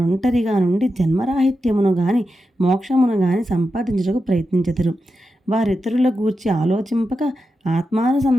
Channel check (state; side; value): normal; both; correlation 0.89